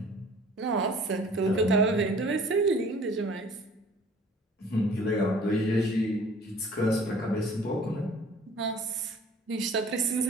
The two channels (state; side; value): normal; both; correlation 0.51